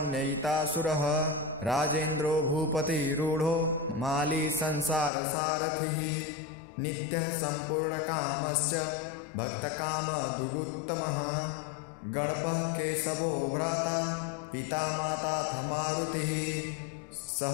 राजेन्द्रो भूपतिरूढो माली संसारसारथिः नित्यः सम्पूर्णकामश्च भक्तकामदुगुत्तमः गणपः केशवो भ्राता पिता माताथ मारुतिः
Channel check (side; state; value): right; drops out; at 5.1 s